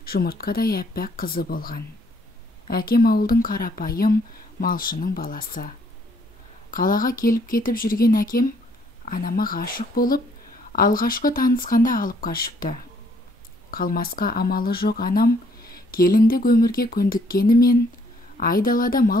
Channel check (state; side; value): normal; both; correlation 0.66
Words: жұмыртқадай әппақ қызы болған. Әкем ауылдың қарапайым малшының баласы. Қалаға келіп кетіп жүрген әкем анама ғашық болып, алғашқы танысқанда алып қашыпты. Қалмасқа амалы жоқ анам келіндік өмірге көндіккенімен айдалада